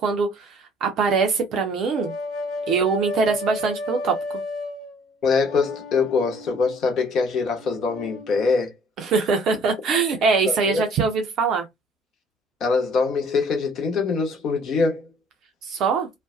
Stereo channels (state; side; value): normal; both; correlation 0.56